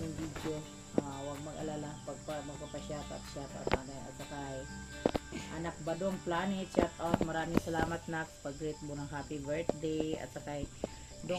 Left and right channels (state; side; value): identical; both; correlation 1.00